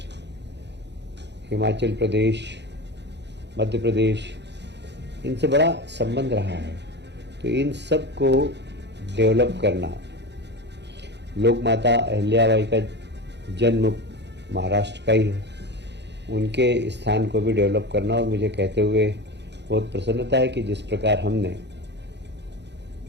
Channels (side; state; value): left; late; 0.50 ms